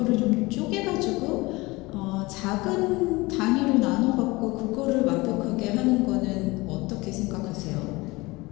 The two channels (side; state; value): right; quieter; 22.5 dB